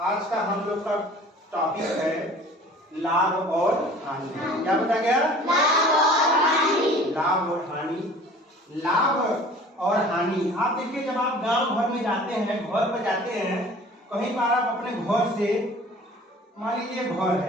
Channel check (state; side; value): normal; both; correlation 0.47